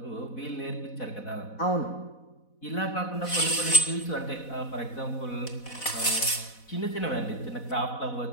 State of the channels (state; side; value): late; right; 4.1 ms